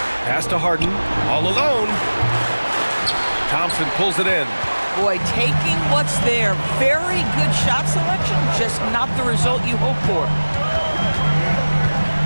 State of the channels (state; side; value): inverted; both; correlation -1.00